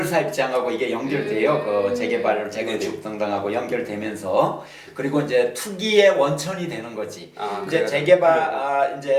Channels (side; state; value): both; identical; correlation 1.00